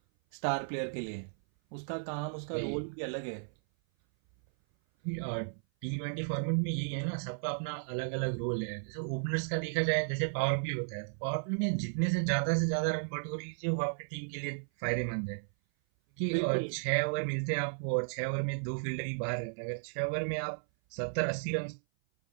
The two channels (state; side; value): silent; left; 55 dB below the other